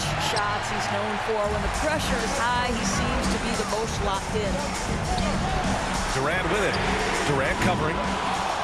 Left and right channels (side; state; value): both; identical; correlation 1.00